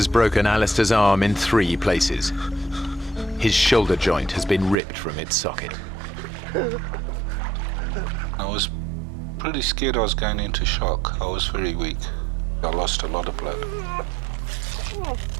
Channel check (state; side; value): drops out; left; at 4.8 s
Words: broken Alistair's arm in 3 places. His shoulder joint has been ripped from its socket. I was pretty scared I was going into shock. I was very weak. I lost a lot of blood.